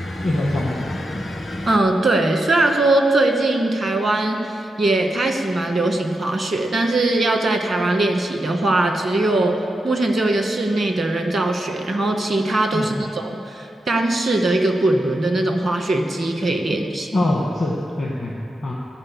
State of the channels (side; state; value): both; normal; correlation 0.86